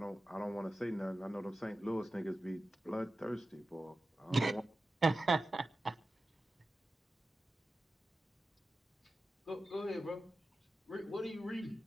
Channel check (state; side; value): normal; both; correlation 0.94